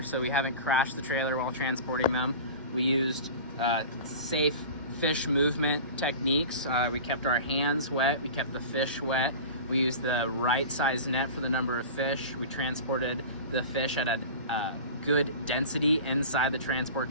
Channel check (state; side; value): inverted; both; correlation -0.35